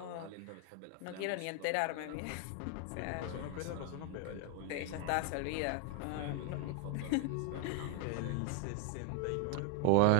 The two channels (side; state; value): both; different; correlation 0.00